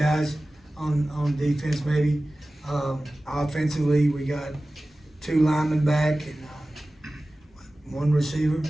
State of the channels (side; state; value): both; normal; correlation 0.97